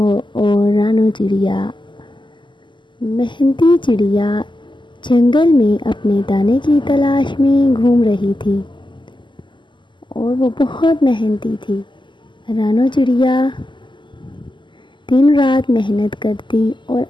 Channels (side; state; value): right; late; 0.23 ms